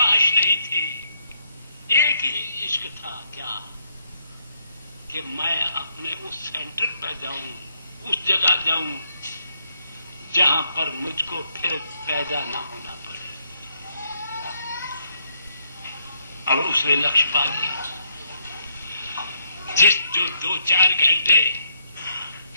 नहीं थी, एक ही इश्क था, क्या कि मैं अपने उस सेंटर पर जाऊं, उस जगह जाऊं जहां पर मुझको फिर पैदा ना होना पड़े। अब उसने लक्ष्य पा लिया। जो 2-4 घंटे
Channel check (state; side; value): inverted; both; correlation -0.73